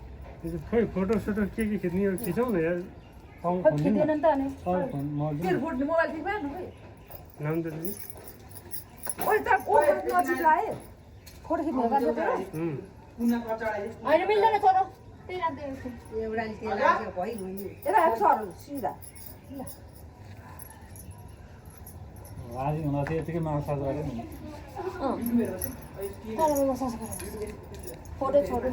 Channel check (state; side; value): identical; both; correlation 1.00